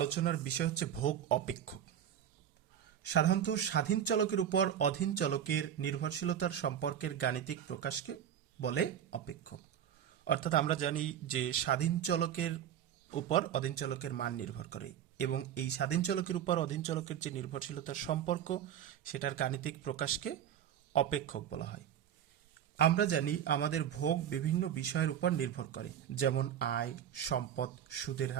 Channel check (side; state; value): left; quieter; 9.8 dB